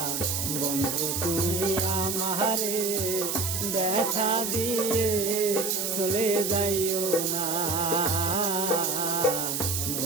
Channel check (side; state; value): right; noise; hiss, 2 dB below the sound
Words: বন্ধু তুমি আমারে ব্যথা দিয়ে চলে যাইও না,